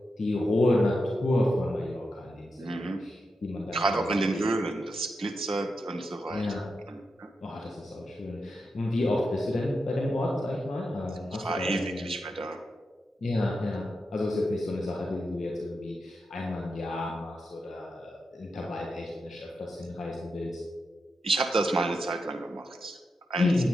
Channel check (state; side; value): normal; both; correlation 0.87